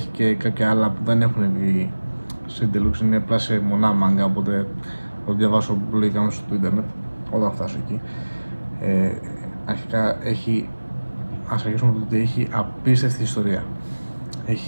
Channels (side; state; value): both; inverted; correlation -1.00